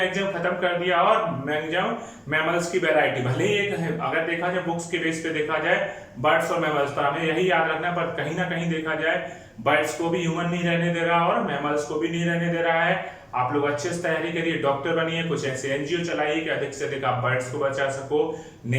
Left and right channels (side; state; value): both; identical; correlation 1.00